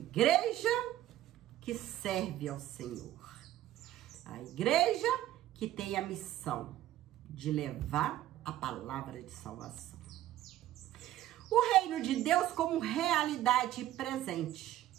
que serve ao Senhor. A igreja que tem a missão de levar a palavra de salvação. O reino de Deus como realidade presente.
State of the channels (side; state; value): left; quieter; 13.6 dB